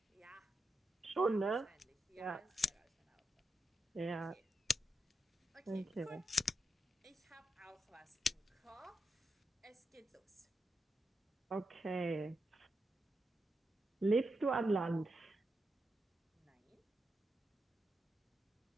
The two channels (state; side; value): normal; both; correlation 0.86